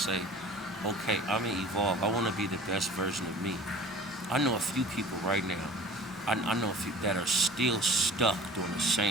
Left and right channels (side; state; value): both; normal; correlation 0.44